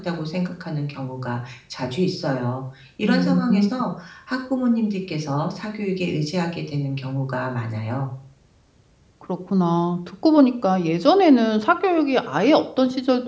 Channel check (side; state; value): both; identical; correlation 1.00